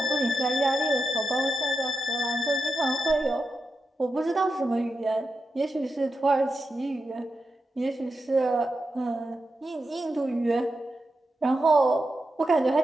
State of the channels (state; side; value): normal; both; correlation 0.89